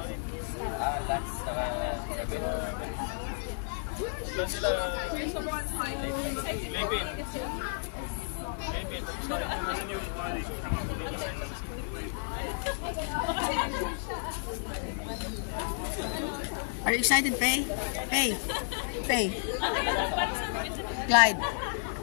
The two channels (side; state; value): right; silent; digital silence